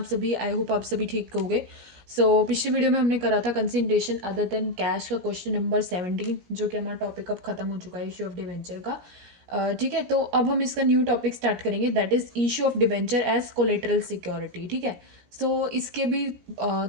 सभी? आई होप आप सभी ठीक होंगे। पिछली वीडियो में हमने करा था कंसिडरेशन अदर देन कैश का क्वेश्चन नंबर 17, जो कि हमारा टॉपिक अब खत्म हो चुका है इशू ऑफ डिवेंचर का। ठीक है, तो अब हम इसका न्यू टॉपिक स्टार्ट करेंगे, that is issue of debenture as collateral security. ठीक है, इसके भी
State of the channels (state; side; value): late; left; 17 ms